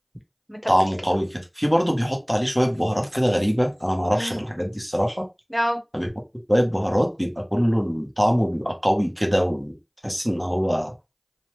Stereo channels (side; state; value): both; identical; correlation 1.00